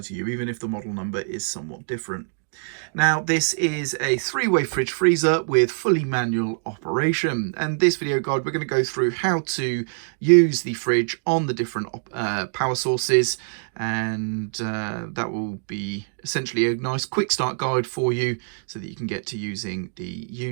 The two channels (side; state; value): left; silent; digital silence